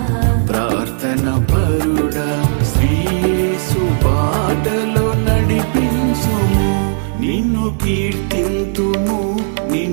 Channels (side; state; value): left; silent; 55 dB below the other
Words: ప్రార్థన పరుడా శ్రీయేసు బాటలో నడిపించుము నిన్ను కీర్తింతుము